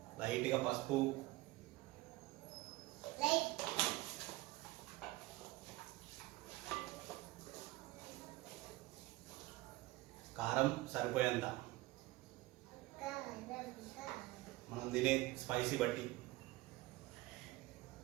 లైట్గా పసుపు, కారం సరిపోయేంత, మనం తినే స్పైసీ బట్టి.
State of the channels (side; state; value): left; quieter; 19.5 dB